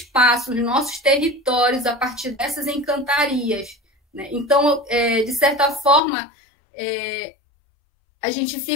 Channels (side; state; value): right; drops out; at 6.0 s